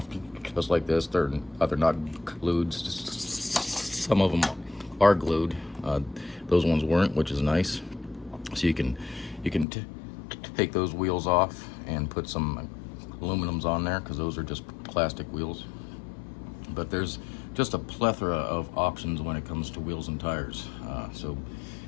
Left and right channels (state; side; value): drops out; right; at 9.7 s